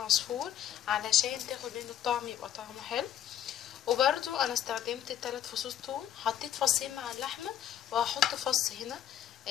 علشان تاخد منه الطعم، يبقى طعمه حلو. وبرده انا استخدمت 3 فصوص ثوم، حطيت فصين مع اللحمه وهحط فص هنا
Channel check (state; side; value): quieter; right; 10.8 dB